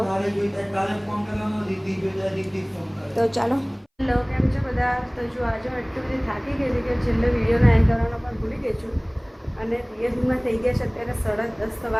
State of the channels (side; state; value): both; identical; correlation 1.00